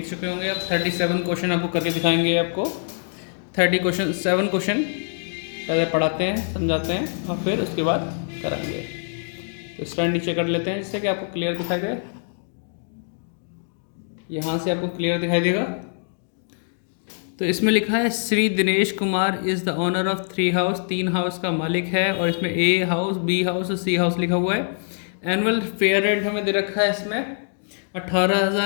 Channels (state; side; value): silent; right; digital silence